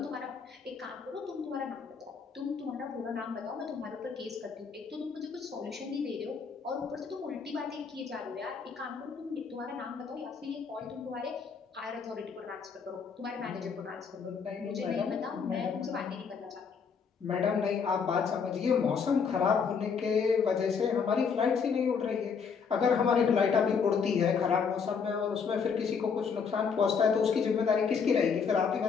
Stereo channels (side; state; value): right; quieter; 6.0 dB